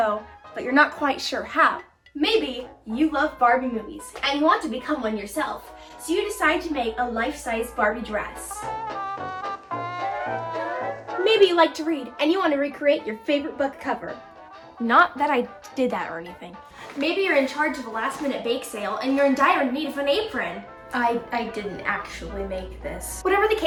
but you're not quite sure how. Maybe you love Barbie movies and you want to become one yourself, so you decide to make a life-size Barbie dress. Maybe you like to read and you want to recreate your favorite book cover. Not that I did that or anything. Maybe you're in charge of a last-minute bake sale and you're in dire need of an apron. I didn't actually make this. Whatever the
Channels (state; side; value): identical; both; correlation 1.00